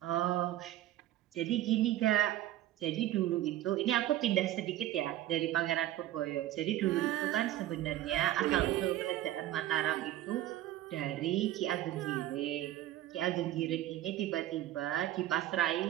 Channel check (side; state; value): left; quieter; 13.9 dB